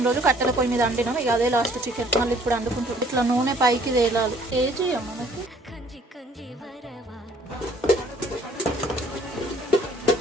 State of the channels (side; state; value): both; normal; correlation 0.58